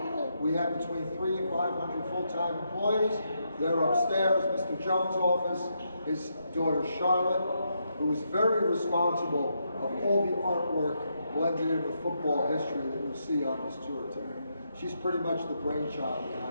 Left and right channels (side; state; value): both; inverted; correlation -0.80